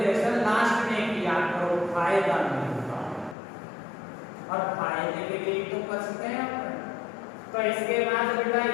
लास्ट में किया करो, फायदा नहीं होता और फायदे के लिए तो बचते हैं अपन। तो इसके बाद बेटा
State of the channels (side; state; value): right; drops out; at 3.4 s